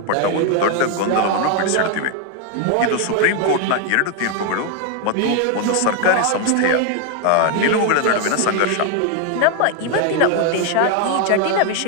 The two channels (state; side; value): different; both; correlation 0.01